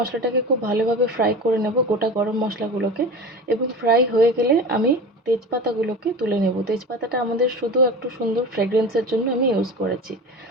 খুব ভালোভাবে ফ্রাই করে নেব, গোটা গরম মশলাগুলোকে, এবং ফ্রাই হয়ে গেলে আমি তেজপাতাগুলোকে তুলে নেব। তেজপাতাটা আমাদের শুধু একটু সুন্দর ফ্রেগরেন্সের জন্য আমি ইউজ করেছি।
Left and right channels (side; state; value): both; normal; correlation 0.31